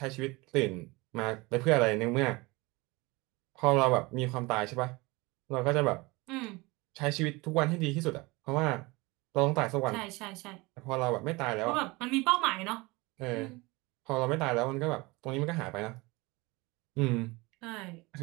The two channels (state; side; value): quieter; left; 23.8 dB